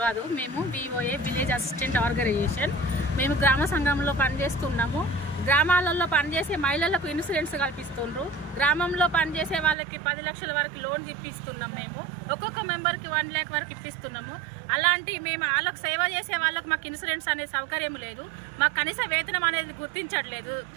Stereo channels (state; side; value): drops out; left; at 9.8 s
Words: కాదు, మేము వివోఏ విలేజ్ అసిస్టెంట్ ఆర్గనైజేషన్. మేము గ్రామ సంఘంలో పనిచేస్తున్నాము. గ్రామాలలో పనిచేసే మహిళలకు ఇన్సూరెన్స్ కల్పిస్తుండ్రు. గ్రామంలో పనిచేసే వాళ్ళకి 10 లక్షల వరకు లోన్ ఇప్పిస్తున్నాం. మేము ఒక్కొక్క మెంబర్కి 1 లక్ష వరకు ఇప్పిస్తున్నాము. అలాంటి మేము వాళ్ళకు సేవ చేసే వాళ్ళకు మాకు ఇన్సూరెన్స్ అనే సౌకర్యం లేదు. మాకు కనీస వేతనం అనేది గుర్తించట్లేదు